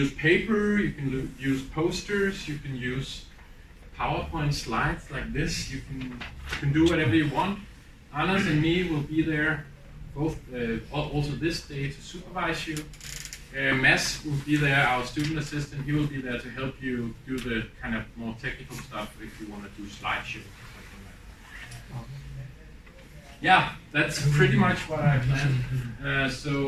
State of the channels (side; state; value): both; identical; correlation 1.00